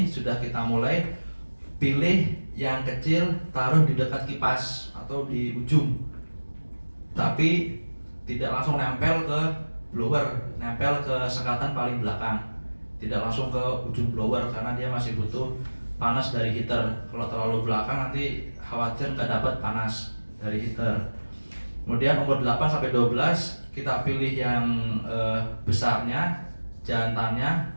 sudah kita mulai pilih yang kecil, taruh di dekat kipas atau di ujung. Tapi tidak langsung nempel ke blower, nempel ke sekatan paling belakang. Tidak langsung ke ujung blower karena dia masih butuh panas dari heater. Kalau terlalu belakang nanti khawatir nggak dapat panas dari heater. Kemudian umur 8 sampai 12 kita pilih yang besarnya, jantannya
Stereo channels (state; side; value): inverted; both; correlation -1.00